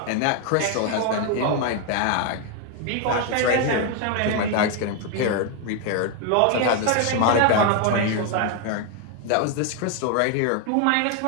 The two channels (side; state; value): both; different; correlation 0.01